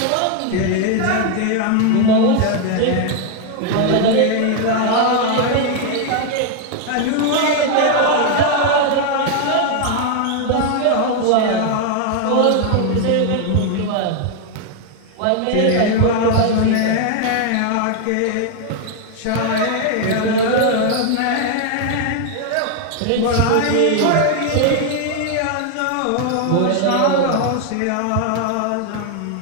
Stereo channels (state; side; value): different; both; correlation 0.00